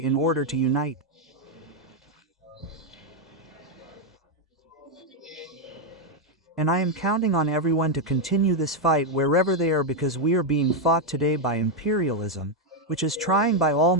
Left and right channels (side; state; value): both; normal; correlation 0.02